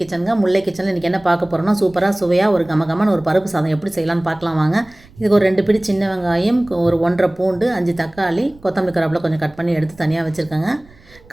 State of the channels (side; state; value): right; noise; rumble, 26 dB below the sound